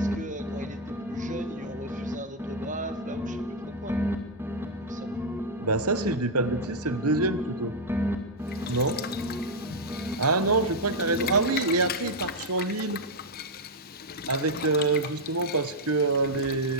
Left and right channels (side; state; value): both; normal; correlation -0.01